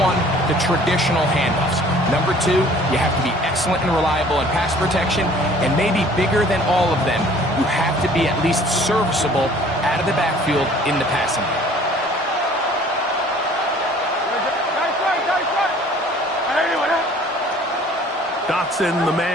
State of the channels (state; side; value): normal; both; correlation 0.53